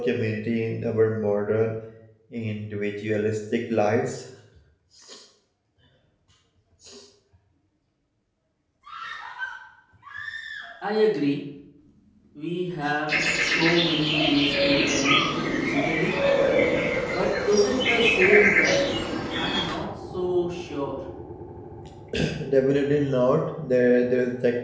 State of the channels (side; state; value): both; identical; correlation 1.00